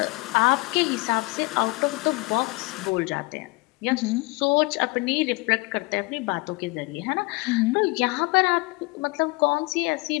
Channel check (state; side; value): quieter; right; 25.1 dB